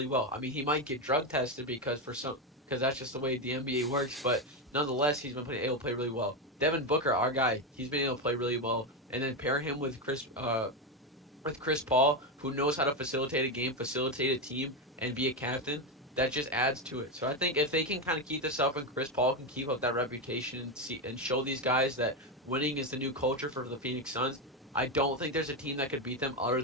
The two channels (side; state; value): both; normal; correlation 0.10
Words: well. I mean, he might get drug tested because that's just the way the NBA works, but nonetheless, he's been able to play really well. Devin Booker, our guy, he's been able to play really well. And then pair him with Chris Paul, who knows how to facilitate a game, facilitate a team, and be a captain. That just adds to it. So I think if they can kind of keep this up, and Chris Paul can keep up that reputation and show these guys that winning is the new culture for the Phoenix Suns, I don't think there's a team that could beat them other